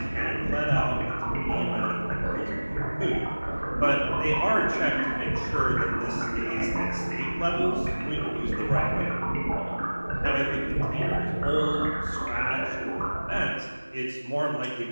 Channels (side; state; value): both; inverted; correlation -1.00